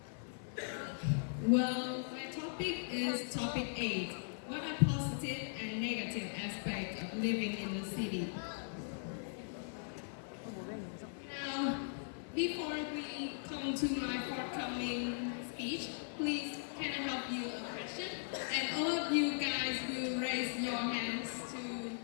Well, my topic is topic 8. What are positive and negative aspects of living in the city? Now, before we come to my forthcoming speech, please can I help you a question? And all of you guys will raise your hands to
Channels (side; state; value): right; silent; 52 dB below the other